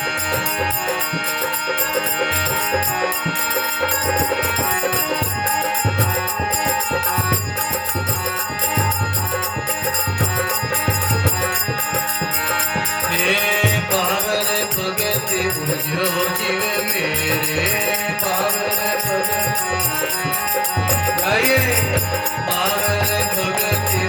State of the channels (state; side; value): identical; both; correlation 1.00